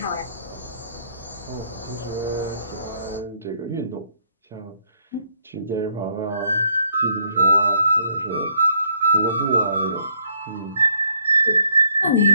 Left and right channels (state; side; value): inverted; both; correlation -0.69